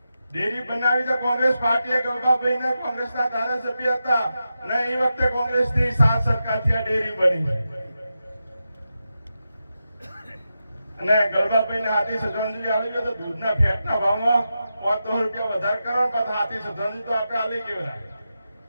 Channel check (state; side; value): inverted; both; correlation -0.89